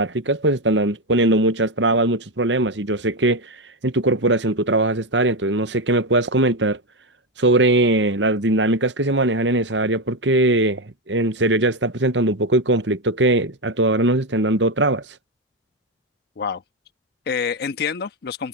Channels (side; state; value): both; normal; correlation 0.09